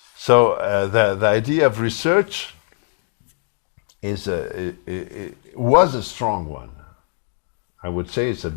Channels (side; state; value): right; silent; digital silence